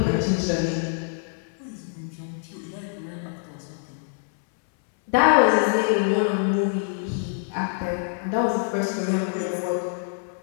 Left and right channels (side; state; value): right; silent; 62 dB below the other